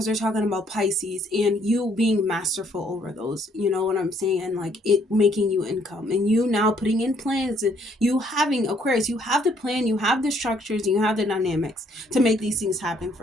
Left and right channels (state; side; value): normal; both; correlation 0.67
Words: they're talking about Pisces and you being masterful over those, you know what I'm saying? And like it making you income, and you now putting in plans, and you having, Aquarius, you have the plan, you have the structures, and you have the dynamics to make these things happen